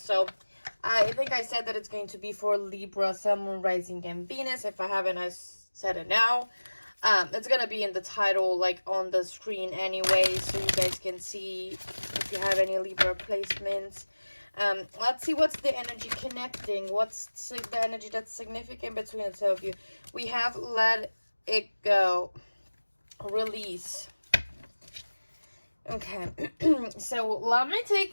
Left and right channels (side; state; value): both; inverted; correlation -1.00